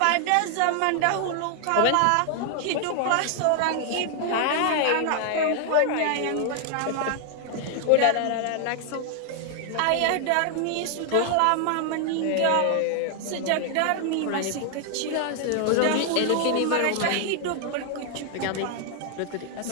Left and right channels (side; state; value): both; different; correlation 0.00